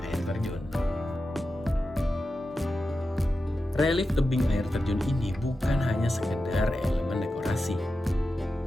air terjun. Relief tebing air terjun ini bukan hanya sekedar elemen dekorasi.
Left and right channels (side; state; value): both; normal; correlation 0.91